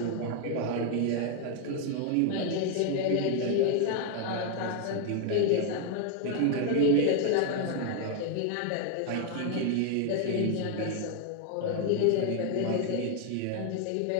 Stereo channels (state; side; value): different; both; correlation 0.00